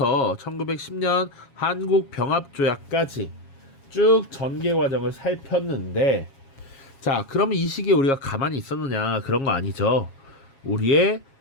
1910년 한국병합조약까지 쭉 전개 과정을 살폈는데, 자, 그러면 이 시기에 우리가 가만히 있었느냐? 그런 거 아니죠. 우리의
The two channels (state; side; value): late; right; 7.3 ms